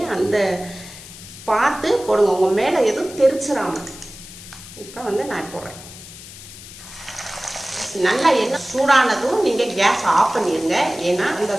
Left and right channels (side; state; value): left; noise; hiss, 16 dB below the sound